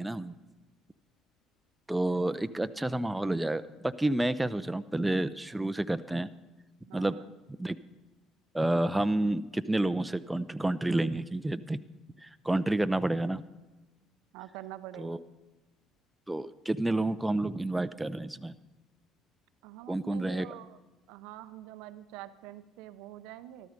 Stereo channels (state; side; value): normal; both; correlation 0.96